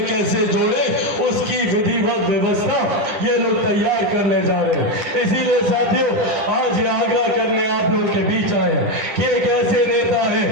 कैसे जोड़े उसकी विधिवत व्यवस्था ये लोग तैयार करने जा रहे हैं। इसीलिए साथियों, आज ये आग्रह करने आप लोग के बीच आए हैं कि एक ऐसे नेता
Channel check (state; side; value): late; left; 10 ms